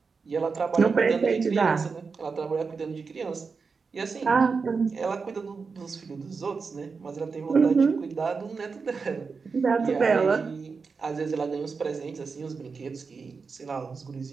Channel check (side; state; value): left; quieter; 4.9 dB